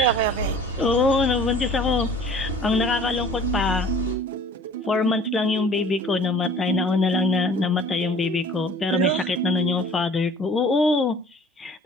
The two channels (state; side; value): normal; both; correlation 0.48